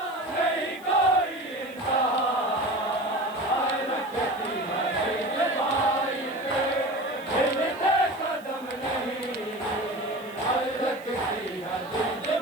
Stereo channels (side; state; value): right; noise; hiss, 25 dB below the sound